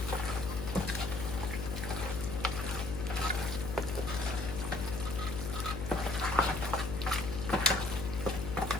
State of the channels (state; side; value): noise; left; hum, 5 dB below the sound